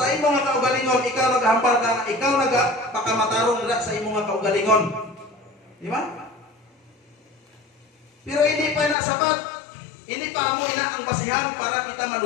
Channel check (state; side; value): drops out; right; at 9.0 s